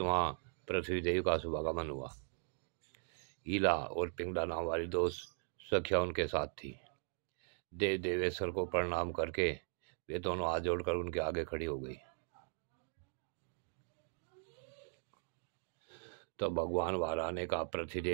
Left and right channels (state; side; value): silent; left; 52 dB below the other